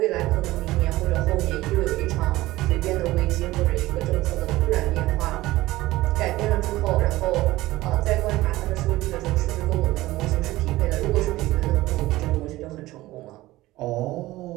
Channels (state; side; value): quieter; left; 17.7 dB